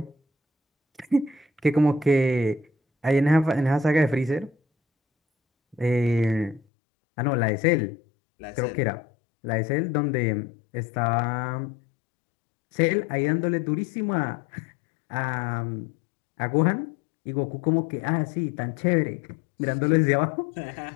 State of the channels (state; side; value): drops out; right; at 6.6 s